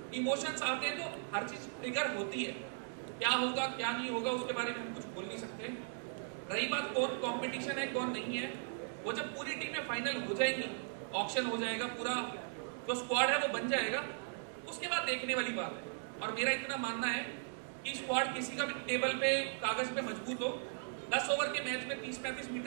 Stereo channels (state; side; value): silent; left; digital silence